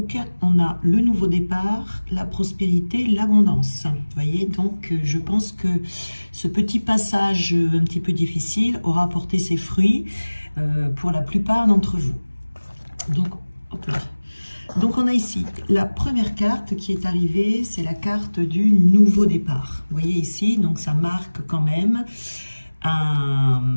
on a le nouveau départ, la prospérité, l'abondance. Vous voyez, donc je pense que ce petit passage un petit peu difficile aura porté ses fruits pour la plupart d'entre vous. Donc, hop là. Donc on a ici la première carte qui est arrivée, c'est la carte du nouveau départ. Vous voyez ici, donc ça marque quand même un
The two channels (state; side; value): inverted; both; correlation -1.00